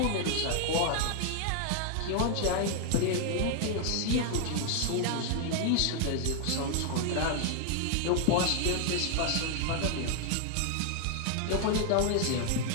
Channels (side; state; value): both; different; correlation 0.00